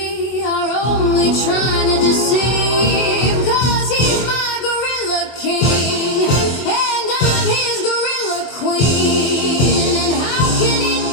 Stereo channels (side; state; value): right; late; 24 ms